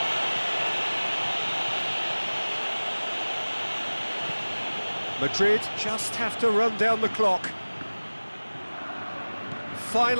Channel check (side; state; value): both; inverted; correlation -1.00